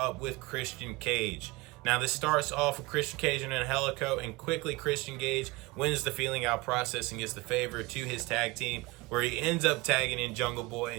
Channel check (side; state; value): left; quieter; 22.6 dB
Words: with Christian Cage. Now this starts off with Christian Cage and Helico, and quickly Christian Cage wins the feeling out process and gets the favor to his tag team, where he ends up tagging in Jungle Boy,